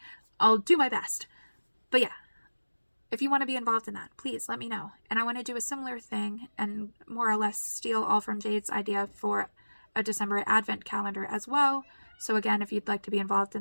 I'll do my best. But yeah, if you want to be involved in that, please let me know. And I want to do a similar thing and more or less steal all from Jade's idea for a December advent calendar as well. So again, if you'd like to be involved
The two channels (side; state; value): both; inverted; correlation -1.00